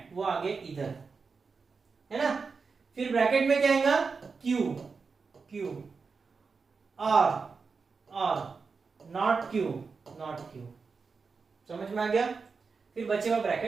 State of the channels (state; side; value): quieter; left; 4.9 dB